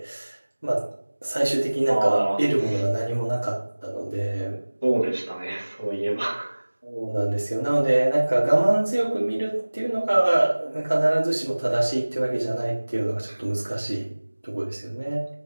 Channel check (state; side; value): inverted; both; correlation -1.00